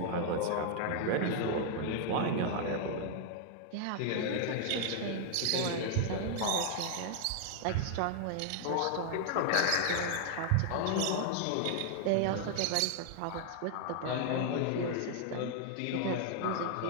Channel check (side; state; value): both; different; correlation 0.00